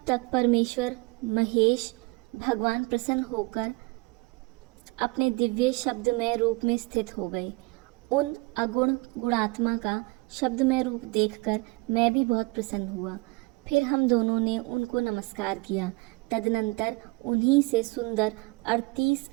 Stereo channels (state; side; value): quieter; left; 26.2 dB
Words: तक परमेश्वर महेश भगवान प्रसन्न होकर अपने दिव्य शब्दमय रूप में स्थित हो गए। उन अगुण गुणात्मा का शब्दमय रूप देखकर मैं भी बहुत प्रसन्न हुआ। फिर हम दोनों ने उनको नमस्कार किया। तदनंतर उन्हीं से सुंदर 38